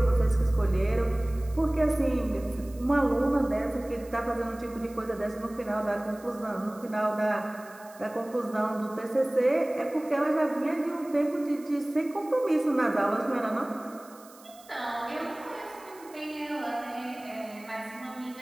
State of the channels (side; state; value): right; noise; hiss, 23 dB below the sound